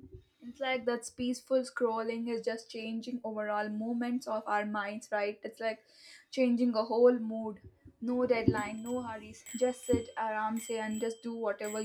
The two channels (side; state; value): both; identical; correlation 1.00